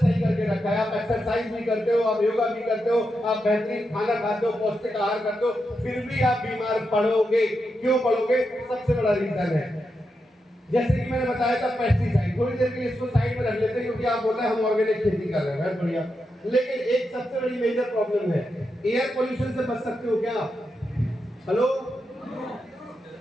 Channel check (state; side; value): normal; both; correlation 0.86